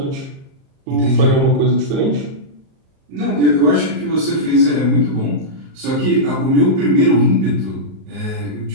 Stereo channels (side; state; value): left; late; 38 ms